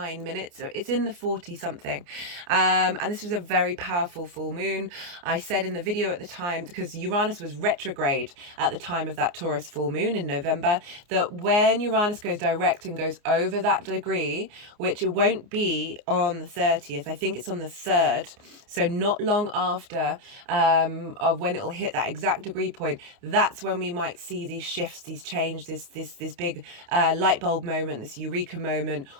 minutes. So it's in the 40 something. And this was a very powerful full moon. I said in the video at the time, because Uranus was retrograde at the time of that Taurus full moon in November, that when Uranus goes direct and goes over that degree, which it won't be on the 30th, I think it's on the 3rd, so not long after of when it'll hit that exact degree point, that's when we might see these shifts, these change, this big light bulb moment, this eureka moment,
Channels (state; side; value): late; left; 29 ms